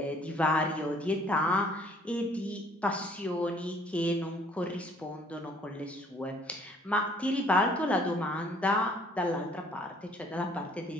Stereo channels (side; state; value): both; normal; correlation 0.59